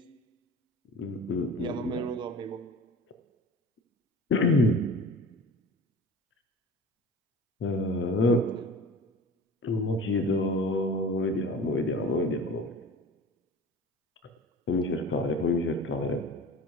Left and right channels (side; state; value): both; normal; correlation 0.38